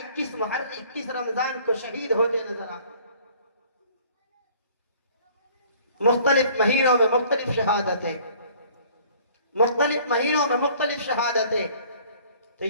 21 رمضان کو شہید ہوتے نظر آئے. مختلف مہینوں میں مختلف شہادتیں، مختلف مہینوں میں مختلف شہادتیں. تو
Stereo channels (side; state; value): both; inverted; correlation -0.54